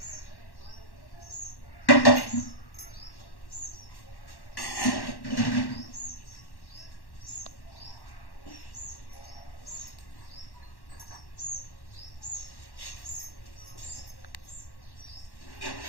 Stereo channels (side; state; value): right; late; 1.1 ms